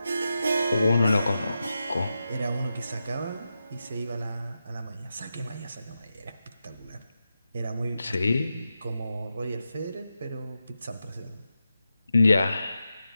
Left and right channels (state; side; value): inverted; both; correlation -0.90